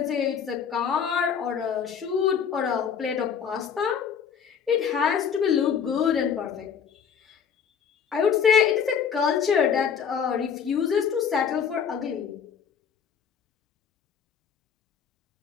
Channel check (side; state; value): right; quieter; 7.3 dB